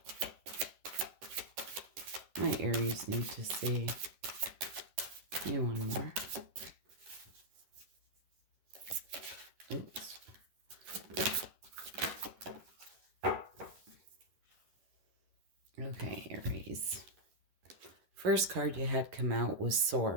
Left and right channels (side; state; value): left; late; 10 ms